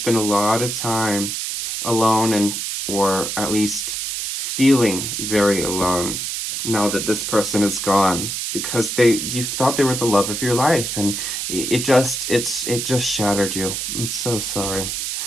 a lot of time alone, or at least feeling very alone now that this person is gone, because you thought they were the love of your life, and it just shattered you. I'm so sorry.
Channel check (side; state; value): right; noise; hiss, 3 dB below the sound